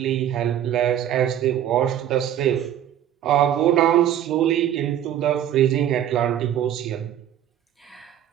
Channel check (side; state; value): left; quieter; 10.8 dB